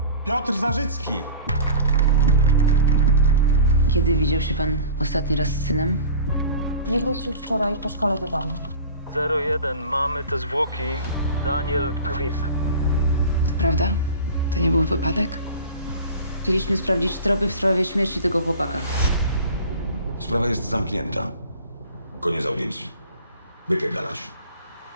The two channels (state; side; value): inverted; both; correlation -0.39